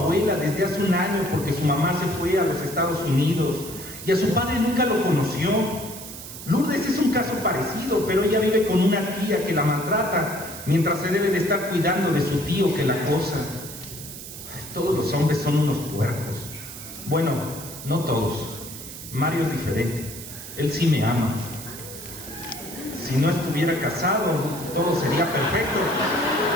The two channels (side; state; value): right; noise; hiss, 12 dB below the sound